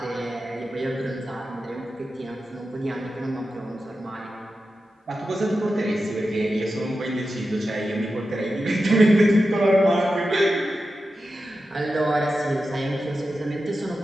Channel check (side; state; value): both; normal; correlation 0.91